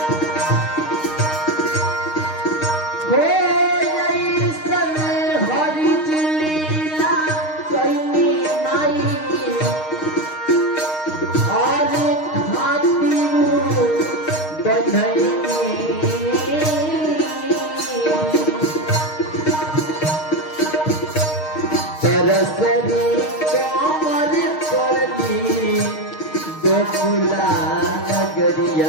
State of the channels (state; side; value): late; right; 6.5 ms